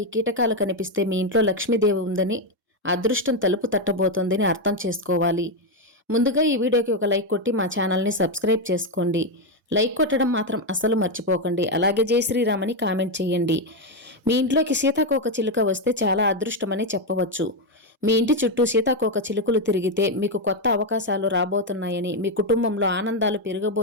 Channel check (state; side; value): normal; both; correlation 0.06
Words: కీటకాలు కనిపిస్తే మీ ఇంట్లో లక్ష్మీదేవి ఉందని, అదృష్టం తలుపు తట్టబోతోందని అర్థం చేసుకోవాలి. ముందుగా ఈ వీడియోకి ఒక లైక్ కొట్టి మా ఛానల్ని సబ్స్క్రైబ్ చేసుకోండి. లైక్ కొట్టడం మాత్రం అస్సలు మర్చిపోకండి. అలాగే జై శ్రీరామ్ అని కామెంట్ చేయండి. మీ ఇంట్లోకి సీతాకోక చిలుక వస్తే చాలా అదృష్టమని చెప్పవచ్చు. మీ ఇంటి చుట్టూ సీతాకోక చిలుకలు తిరిగితే మీకు కొత్త అవకాశాలు రాబోతున్నాయని, మీ కుటుంబంలో ఆనందాలు